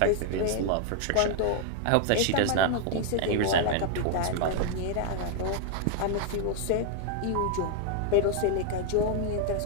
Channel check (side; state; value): both; different; correlation 0.00